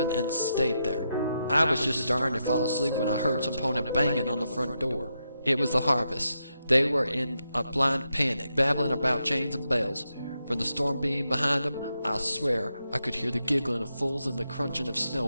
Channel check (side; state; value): both; inverted; correlation -0.84